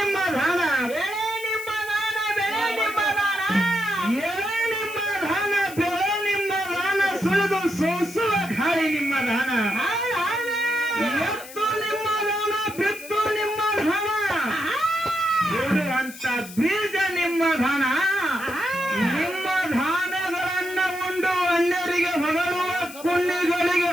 ಧಾನ ಬೆಳೆ ನಿಮ್ಮ ದಾನ ಬೆಳೆ ನಿಮ್ಮ ದಾನ ಎಳೆ ನಿಮ್ಮ ಧಾನ ಬೆಳೆ ನಿಮ್ಮ ದಾನ ಸುಳಿದು ಸೋಸುವ ಗಾಳಿ ನಿಮ್ಮ ದಾನ ಎತ್ತು ನಿಮ್ಮ ದಾನ ಬಿತ್ತು ನಿಮ್ಮ ದಾನ ಬಿಡುವಂತ ಬೀಜ ನಿಮ್ಮ ದಾನ ನಿಮ್ಮ ಧಾನ್ಯಗಳನ್ನ ಉಂಡು ಅನ್ಯರಿಗೆ ಹೊಗಳುವ ಪುಣ್ಯಗಳಿಗೆ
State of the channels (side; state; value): left; noise; hiss, 16 dB below the sound